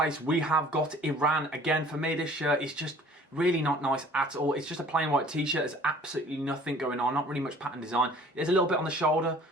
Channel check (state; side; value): normal; both; correlation 0.51